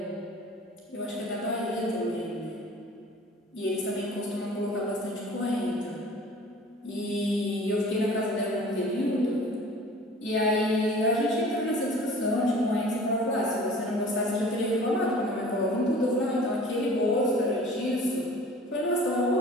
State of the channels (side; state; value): both; normal; correlation 0.45